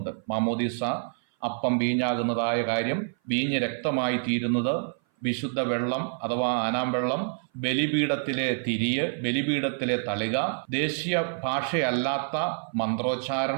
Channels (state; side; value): silent; left; 57 dB below the other